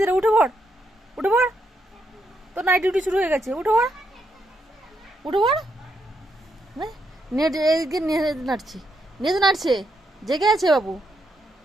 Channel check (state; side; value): normal; both; correlation 0.79